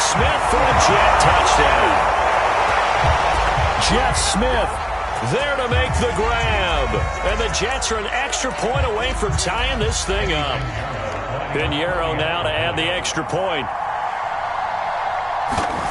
for a Jet touchdown. Jeff Smith there to make the grab. And the Jets are an extra point away from tying this thing up. Pinheiro now to add the extra point.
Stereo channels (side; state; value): both; identical; correlation 1.00